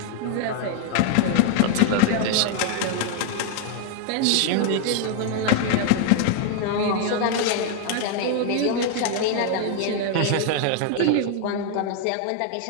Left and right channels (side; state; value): both; different; correlation 0.00